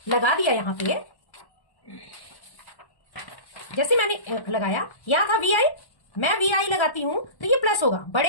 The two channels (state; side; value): late; right; 1.1 ms